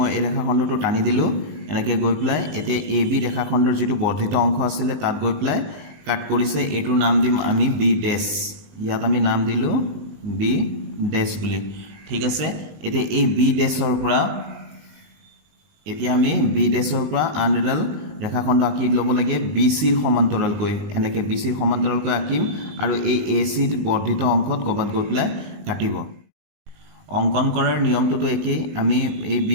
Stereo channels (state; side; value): late; left; 19 ms